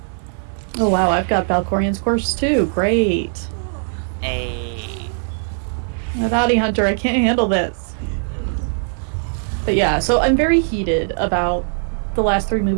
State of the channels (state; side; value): silent; left; 64 dB below the other